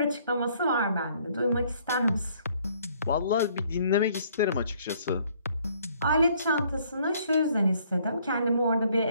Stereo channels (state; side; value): inverted; both; correlation -0.63